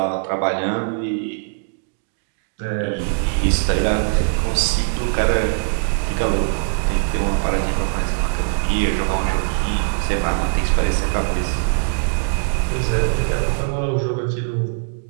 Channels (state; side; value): silent; left; digital silence